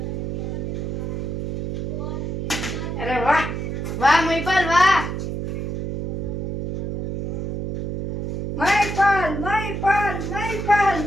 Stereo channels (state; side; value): noise; right; hum, 4 dB below the sound